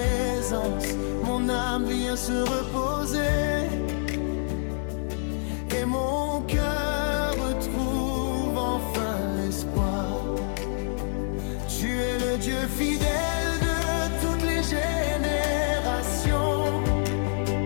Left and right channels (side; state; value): right; silent; digital silence